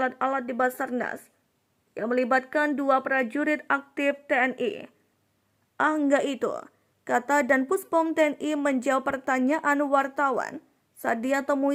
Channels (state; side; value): identical; both; correlation 1.00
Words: di Basarnas yang melibatkan 2 prajurit aktif TNI. Enggak itu, kata Danpuspom TNI menjawab pertanyaan wartawan saat dia